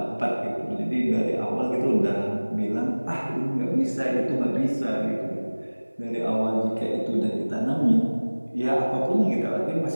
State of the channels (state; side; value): inverted; both; correlation -1.00